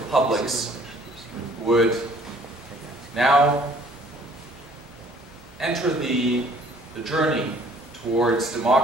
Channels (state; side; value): noise; left; hum, 29 dB below the sound